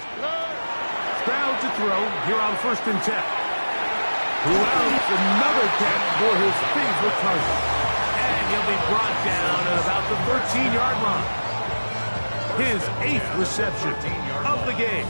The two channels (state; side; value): inverted; both; correlation -1.00